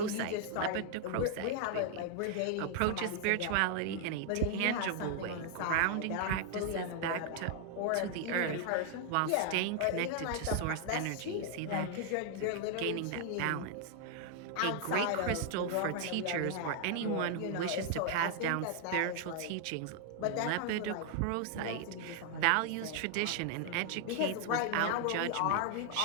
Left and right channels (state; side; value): different; both; correlation 0.00